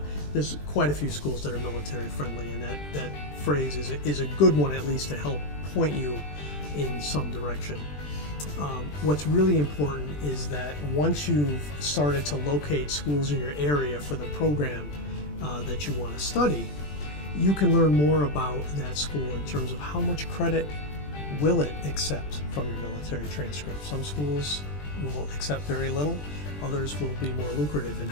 There's quite a few schools that are military friendly, and that phrase is a good one, at least, to help point you in some direction. What's really important is that once you've started to locate schools in your area for the program that you want to study, you can learn more about that school in terms of how much credit will it accept from your military transcript. Some schools will accept very little, others will be more lucrative in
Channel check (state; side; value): late; right; 20 ms